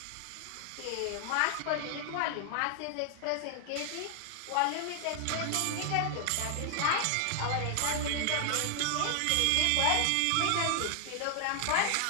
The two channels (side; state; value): both; different; correlation 0.00